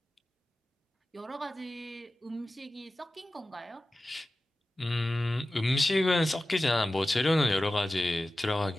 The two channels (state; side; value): normal; both; correlation 0.95